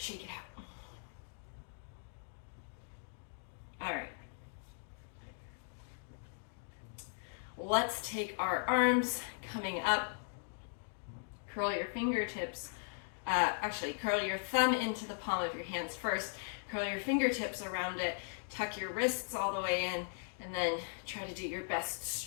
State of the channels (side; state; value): right; silent; digital silence